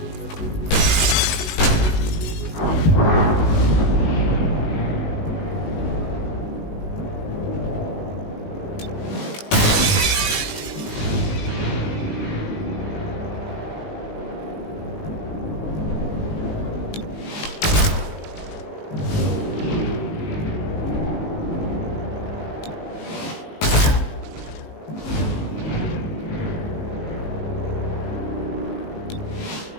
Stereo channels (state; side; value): late; right; 19 ms